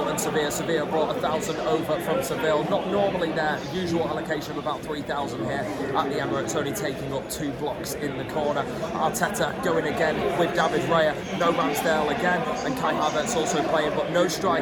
and Sevilla. Sevilla brought 1,000 over from Seville. Not normally their usual allocation of about 3,000 here at the Emirates, only taking up 2 blocks in the corner. Arteta going again with David Raya, no Ramsdale again, and Kai Havertz also playing, but no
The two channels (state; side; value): identical; both; correlation 1.00